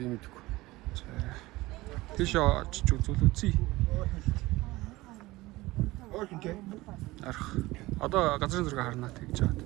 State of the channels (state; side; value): quieter; left; 19.6 dB